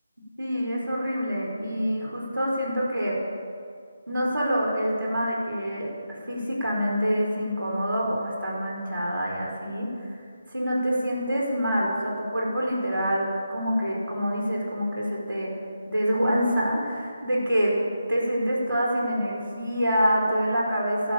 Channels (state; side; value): inverted; both; correlation -0.87